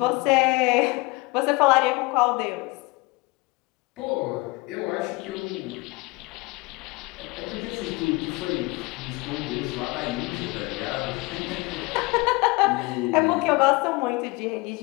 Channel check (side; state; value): right; quieter; 24.5 dB